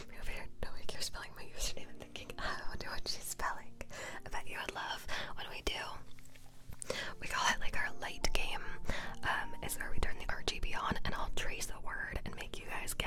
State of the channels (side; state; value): both; identical; correlation 1.00